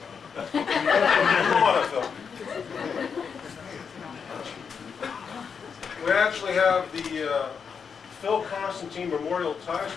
Come on up, Phil. We actually have the Phil Konstantin Memorial Tie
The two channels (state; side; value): quieter; right; 6.3 dB